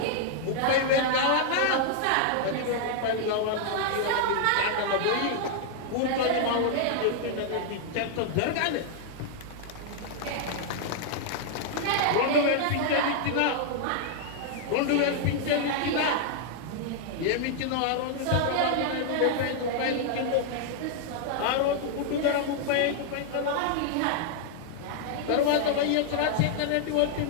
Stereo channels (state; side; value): different; both; correlation -0.01